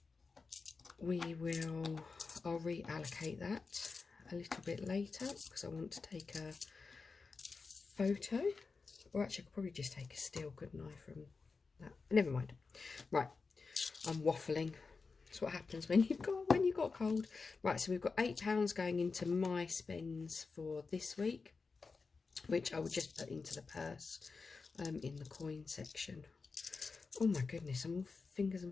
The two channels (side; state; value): right; quieter; 4.5 dB